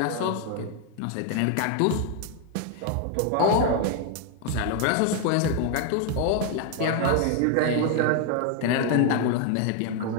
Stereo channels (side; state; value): both; different; correlation 0.00